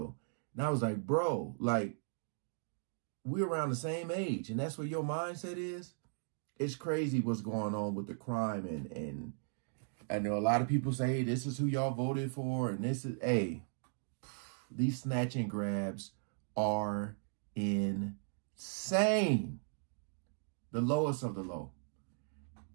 And I was like, bro, like, we're around the same age, and that's what your mindset is? It's crazy what's going on with the crime. And I know a lot of people say, this is who y'all voted for, and this is, hey, these snatch and grabs are insane. The lowest of the low.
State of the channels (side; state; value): left; silent; digital silence